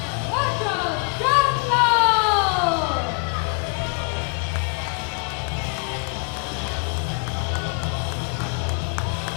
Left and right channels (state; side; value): quieter; right; 35.9 dB